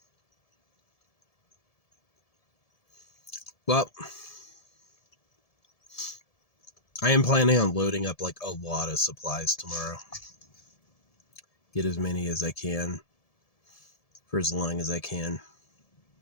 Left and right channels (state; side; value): late; right; 1.7 ms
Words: Well, I am planning on loading up like a lot of supplies tomorrow. Get as many as I can for as long as I can.